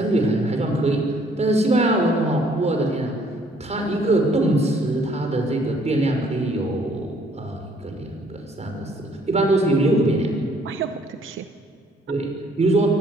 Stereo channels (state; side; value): normal; both; correlation 0.62